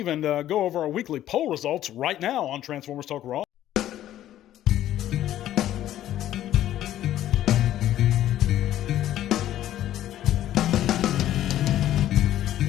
go over our weekly poll results right now on Transformers Talk Raw.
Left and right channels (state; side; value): quieter; right; 12.6 dB